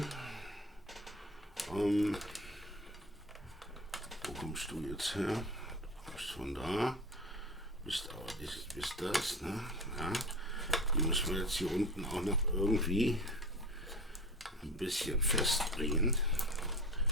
Wo kommst du jetzt her? Du kommst von da. Bist das, ne? Ja. Die müssen wir jetzt hier unten auch noch irgendwie ein bisschen festbringen.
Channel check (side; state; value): both; normal; correlation 0.32